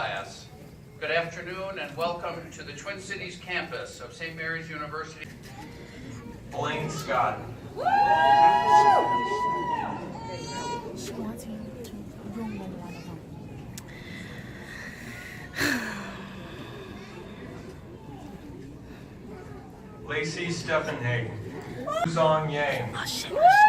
Good afternoon and welcome to the Twin Cities campus of St. Mary's University. Blaine Scott. Lacey Stephenhagen. Zong Yang.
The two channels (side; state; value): both; identical; correlation 1.00